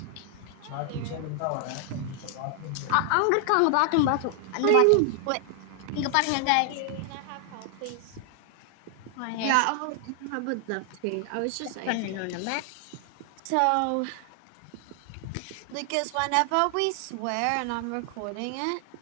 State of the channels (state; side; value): different; both; correlation 0.00